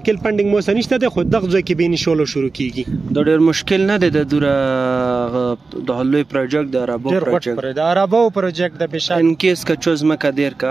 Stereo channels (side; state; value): left; quieter; 4.0 dB